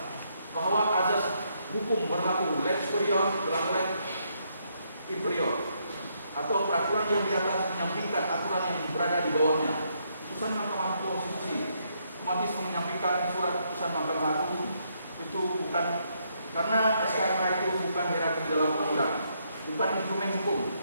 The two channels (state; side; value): inverted; both; correlation -0.75